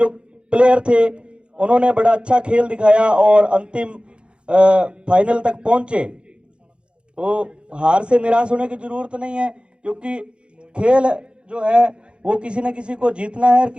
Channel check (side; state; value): left; late; 0.056 ms